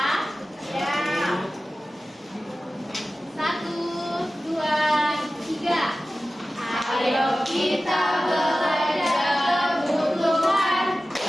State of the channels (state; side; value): normal; both; correlation 0.96